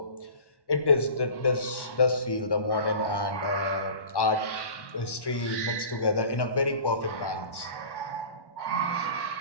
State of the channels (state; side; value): late; right; 1.1 ms